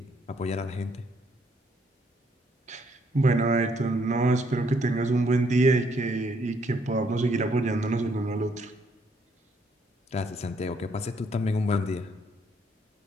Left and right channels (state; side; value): normal; both; correlation 0.69